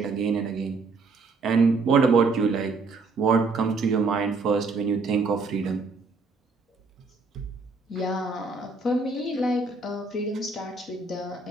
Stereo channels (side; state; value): left; quieter; 3.9 dB